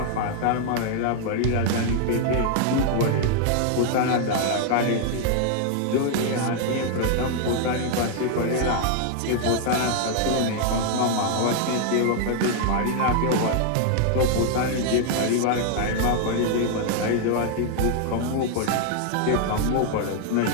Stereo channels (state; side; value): different; both; correlation 0.00